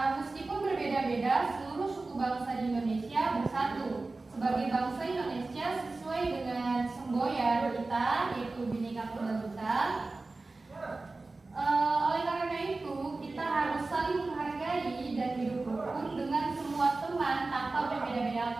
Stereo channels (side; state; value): left; quieter; 3.4 dB